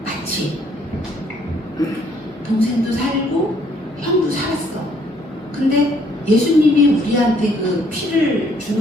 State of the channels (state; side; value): noise; left; hum, 27 dB below the sound